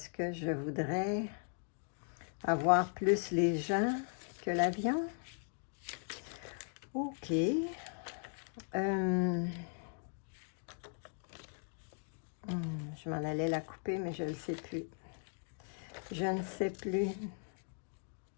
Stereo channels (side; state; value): right; silent; 52 dB below the other